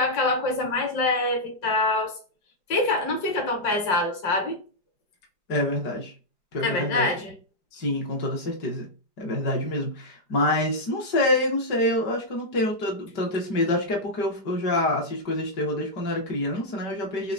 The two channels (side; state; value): right; late; 4.9 ms